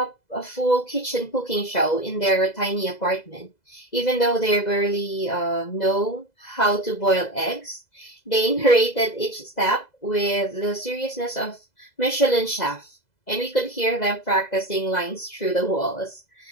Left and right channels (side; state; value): right; late; 2.0 ms